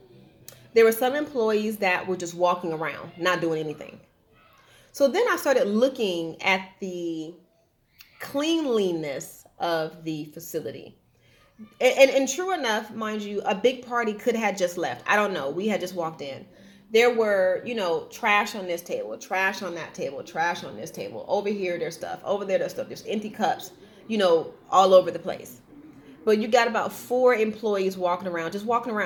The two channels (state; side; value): identical; both; correlation 1.00